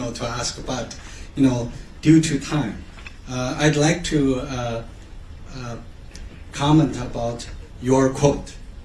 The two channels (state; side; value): identical; both; correlation 1.00